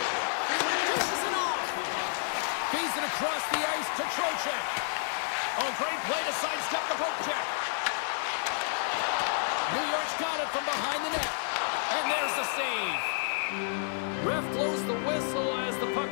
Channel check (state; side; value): silent; right; digital silence